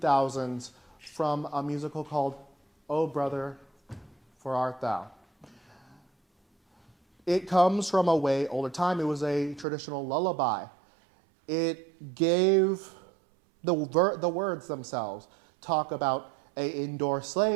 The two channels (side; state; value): left; drops out; at 9.7 s